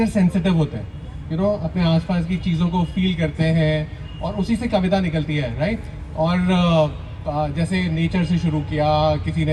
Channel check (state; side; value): identical; both; correlation 1.00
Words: सेंसिटिव होते हैं, अपने आसपास की चीज़ों को फील करते हैं और उसी से कविता निकलती है, राइट? और जैसे नेचर से शुरू किया, किसी